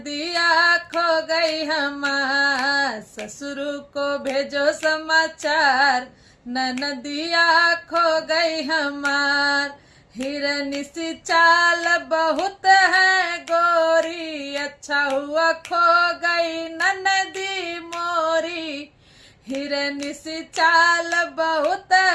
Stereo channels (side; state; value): both; identical; correlation 1.00